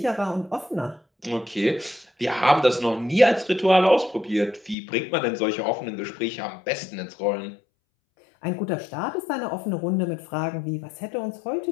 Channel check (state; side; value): drops out; right; at 4.8 s